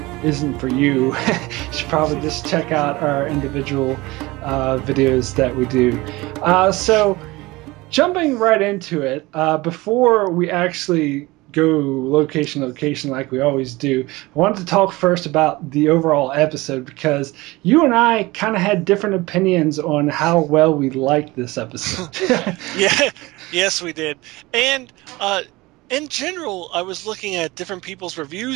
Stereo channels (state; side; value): quieter; left; 21.2 dB